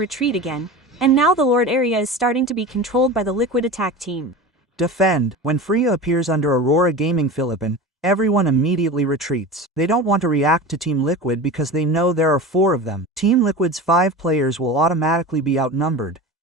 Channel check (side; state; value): both; normal; correlation 0.31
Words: again, and now the Lord area is starting to be controlled by the Liquid attack team. Defend. When Freya appears under AURORA Gaming Philippine, everyone immediately retreats. They don't want to react to Team Liquid because they know there are 4 of them. Team Liquid's 5 players will automatically be outnumbered,